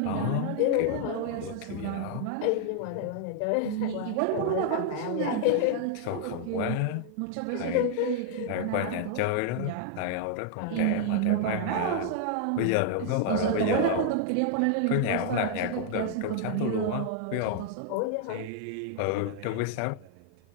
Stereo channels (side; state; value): both; different; correlation 0.00